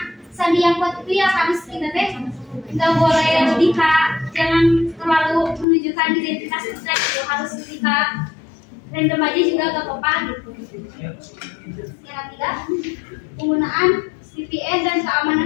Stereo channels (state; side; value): drops out; right; at 5.7 s